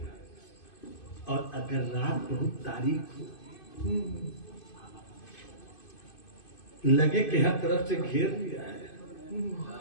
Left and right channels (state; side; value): late; right; 2.5 ms